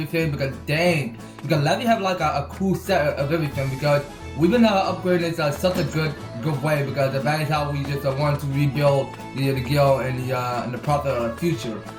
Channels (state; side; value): identical; both; correlation 1.00